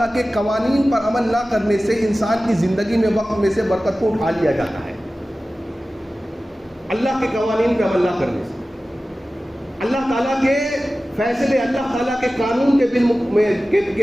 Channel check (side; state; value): both; normal; correlation 0.96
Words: کے قوانین پر عمل نہ کرنے سے انسان کی زندگی میں وقت میں سے برکت کو اٹھا لیا جاتا ہے. اللہ کے قوانین پر عمل نہ کرنے سے، اللہ تعالیٰ کے فیصلے، اللہ تعالیٰ کے قانون